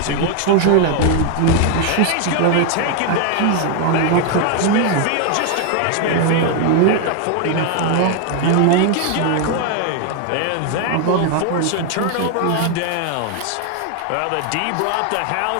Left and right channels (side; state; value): both; different; correlation 0.01